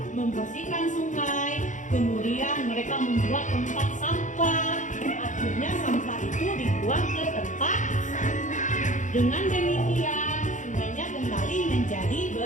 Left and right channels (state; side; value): late; right; 0.36 ms